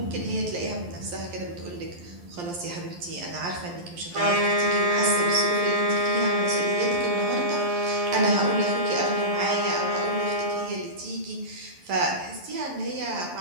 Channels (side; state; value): left; late; 11 ms